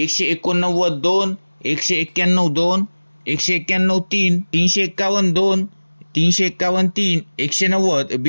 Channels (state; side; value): inverted; both; correlation -1.00